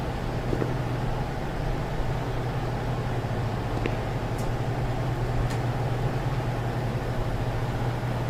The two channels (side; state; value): both; identical; correlation 1.00